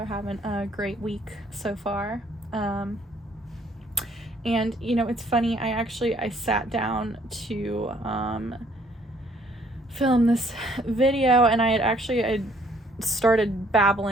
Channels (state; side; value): normal; both; correlation 0.63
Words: having a great week so far. And it's funny, I sat down to film this video, and I started